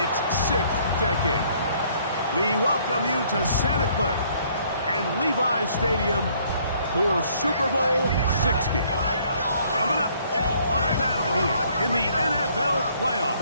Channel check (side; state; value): both; inverted; correlation -0.63